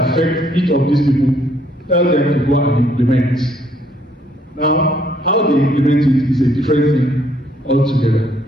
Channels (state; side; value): normal; both; correlation 0.67